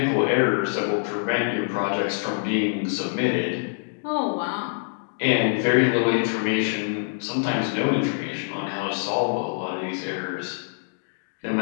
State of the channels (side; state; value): right; silent; digital silence